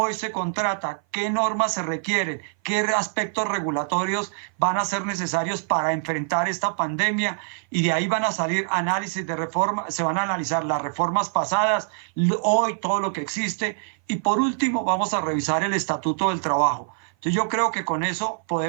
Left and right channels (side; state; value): left; silent; 57 dB below the other